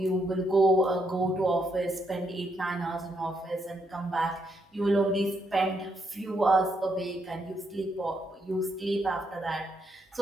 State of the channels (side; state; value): both; normal; correlation 0.77